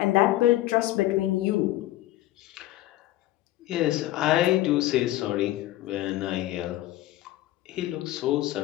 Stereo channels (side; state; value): right; quieter; 15.7 dB